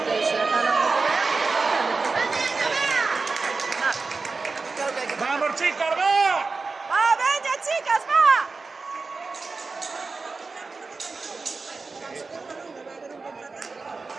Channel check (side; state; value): left; quieter; 4.1 dB